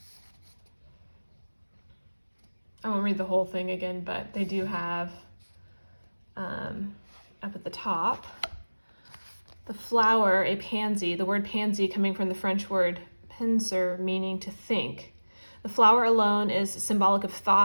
I won't read the whole thing again, but they do have up at the top the flower, a pansy, the word pansy coming from the French word penser, meaning to think. The flower alone is symbolic of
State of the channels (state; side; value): inverted; both; correlation -1.00